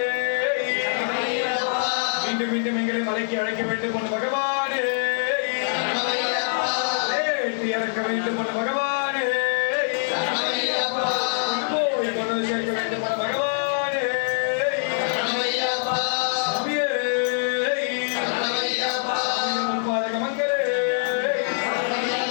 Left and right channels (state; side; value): silent; right; 62 dB below the other